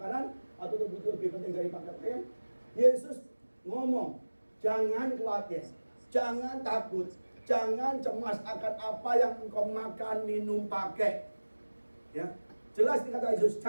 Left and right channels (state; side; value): inverted; both; correlation -1.00